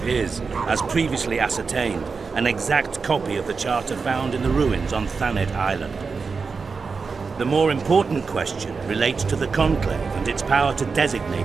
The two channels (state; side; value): quieter; left; 4.9 dB